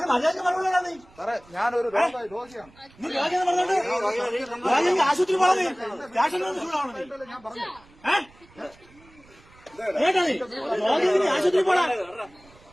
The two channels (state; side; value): noise; right; rumble, 27 dB below the sound